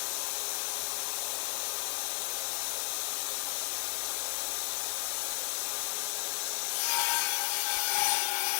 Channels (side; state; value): right; silent; digital silence